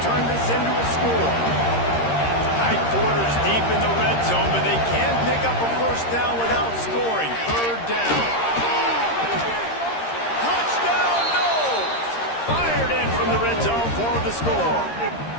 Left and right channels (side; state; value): right; late; 13 ms